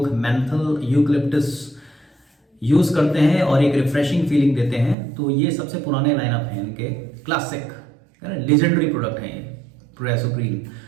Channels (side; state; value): left; drops out; at 5.0 s